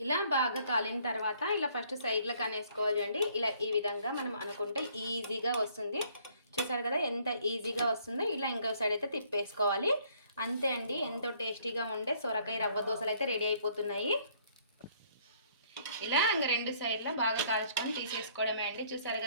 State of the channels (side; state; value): both; inverted; correlation -0.63